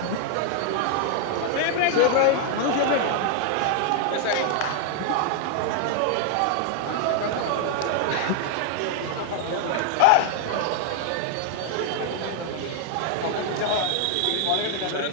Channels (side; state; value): both; different; correlation 0.00